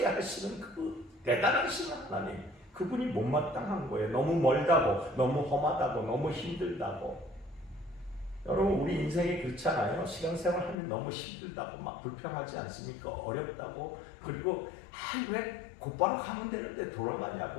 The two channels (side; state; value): right; drops out; at 10.8 s